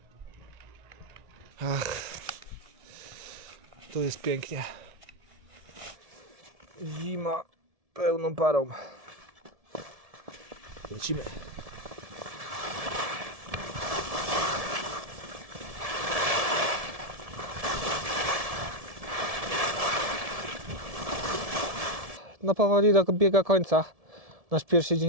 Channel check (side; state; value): left; late; 1.7 ms